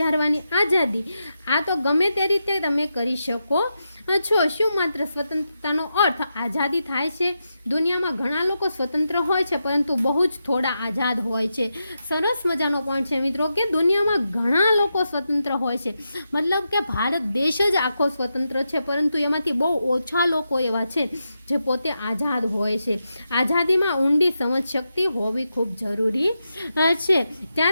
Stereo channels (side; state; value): both; inverted; correlation -0.87